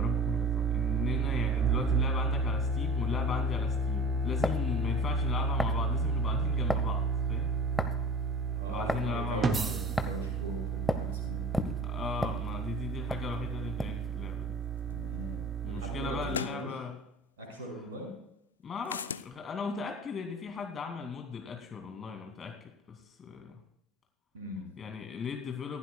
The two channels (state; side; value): normal; both; correlation 0.40